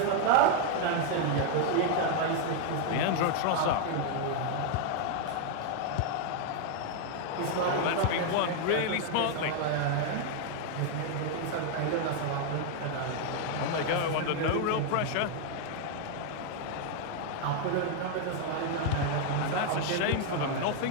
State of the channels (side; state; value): both; different; correlation 0.00